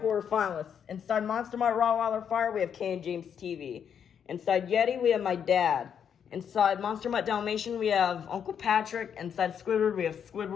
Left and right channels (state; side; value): quieter; right; 8.0 dB